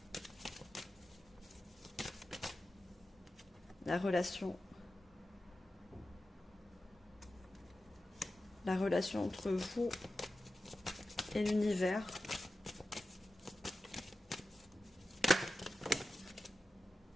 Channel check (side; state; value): both; normal; correlation 0.93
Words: La relation entre vous et l'univers.